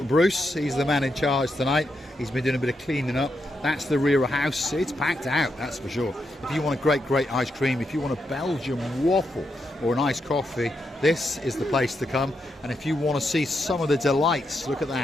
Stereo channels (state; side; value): normal; both; correlation 0.83